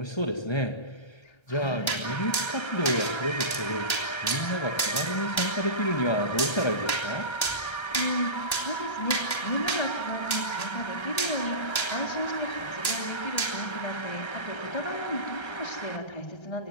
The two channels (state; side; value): late; right; 1.3 ms